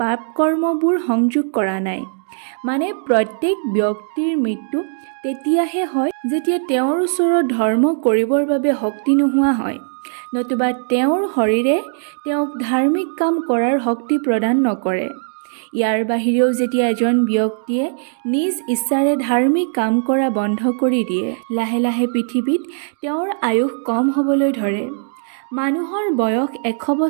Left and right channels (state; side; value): silent; left; digital silence